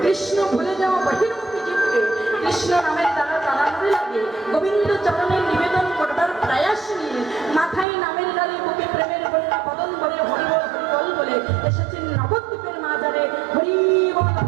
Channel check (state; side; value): drops out; left; at 7.9 s